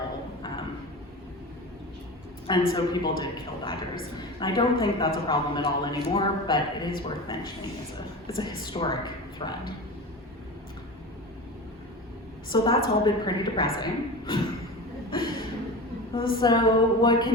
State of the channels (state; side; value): normal; both; correlation 0.29